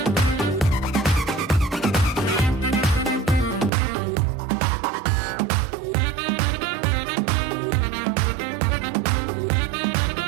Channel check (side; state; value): left; drops out; at 3.7 s